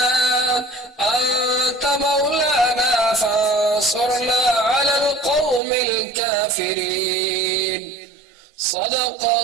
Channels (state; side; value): drops out; left; at 5.6 s